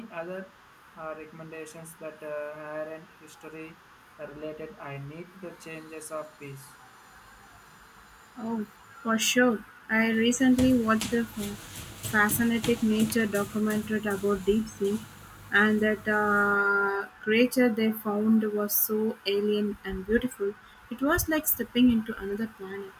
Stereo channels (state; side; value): identical; both; correlation 1.00